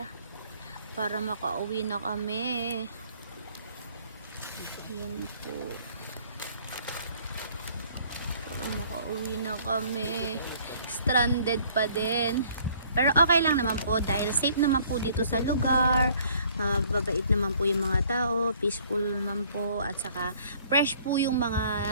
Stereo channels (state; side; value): inverted; both; correlation -0.58